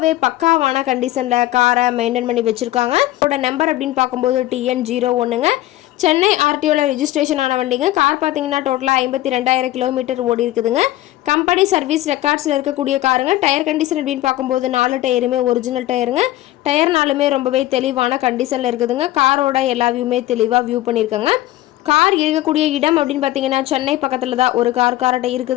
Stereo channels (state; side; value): quieter; right; 15.7 dB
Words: பக்காவான கண்டிஷனில் காரை மெயின்டைன் பண்ணி வச்சுருக்காங்க. அதோட நம்பர் அப்படின்னு பார்க்கும்போது TN01ங்க. சென்னை RTOவில் ரெஜிஸ்ட்ரேஷன் ஆன வண்டிங்க. கார் பார்த்தீங்கன்னா டோட்டலாக 52,000 கிலோமீட்டர் ஓடி இருக்குதுங்க. கம்பெனி சர்வீஸ் ரெக்கார்ட்ஸில் இருக்கக்கூடிய காருங்க. டயர் கண்டிஷன் அப்படின்னு பார்க்கும்போது 4 டயருமே ஒரிஜினல் டயருங்க. டயர்னாலுமே ரொம்பவே தெளிவான கண்டிஷனில் இருக்குதுங்க. காரோட எல்லா வியூமே தெளிவாக வியூ பண்ணியிருக்காங்க. கார் இருக்கக்கூடிய இடம் அப்படின்னு பார்த்தீங்கன்னா சென்னை பக்கத்தில் தான் ஒரு கார்கிட்ட